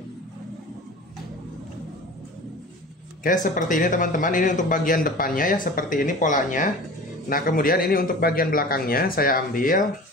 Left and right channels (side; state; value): both; normal; correlation 0.38